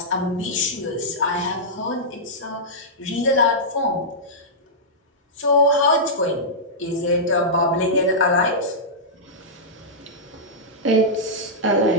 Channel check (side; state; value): both; normal; correlation -0.12